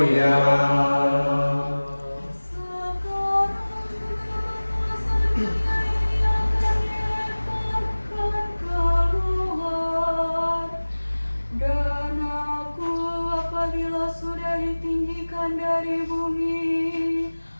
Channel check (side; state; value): both; inverted; correlation -1.00